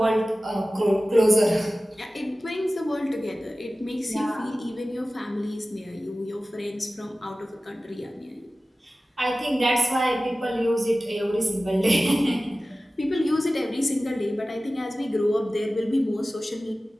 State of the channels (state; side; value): normal; both; correlation 0.96